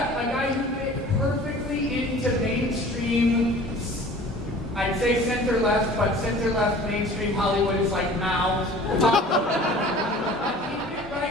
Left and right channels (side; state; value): both; normal; correlation 0.45